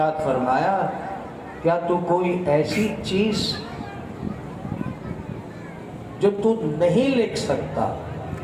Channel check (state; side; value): identical; both; correlation 1.00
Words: فرمایا کیا تو کوئی ایسی چیز جو تو نہیں لکھ سکتا،